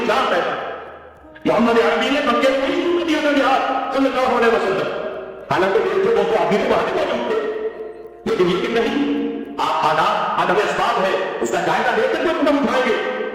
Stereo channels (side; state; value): both; identical; correlation 1.00